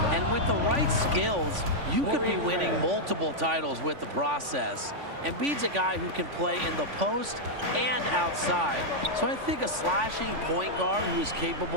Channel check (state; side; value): late; left; 3.5 ms